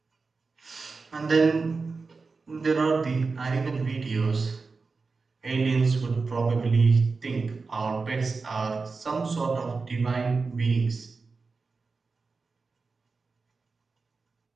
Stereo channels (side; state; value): left; quieter; 4.3 dB